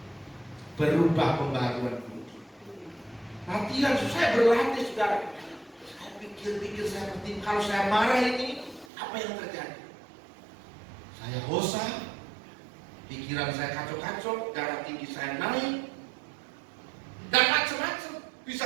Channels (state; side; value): drops out; left; at 8.8 s